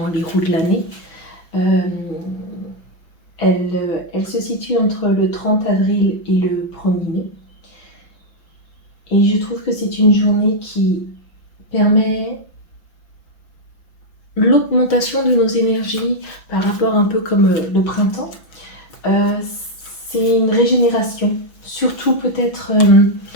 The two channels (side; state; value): right; late; 5.9 ms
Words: les roues de l'année. Elle se situe entre le 30 avril et le 1er mai. Et je trouve que c'est une journée qui permet l'augmentation de nos énergies par rapport un peu comme le printemps. C'est une régénération, surtout peut-être